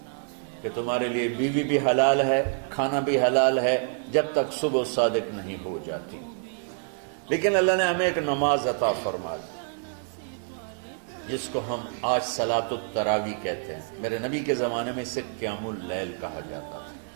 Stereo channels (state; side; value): silent; left; digital silence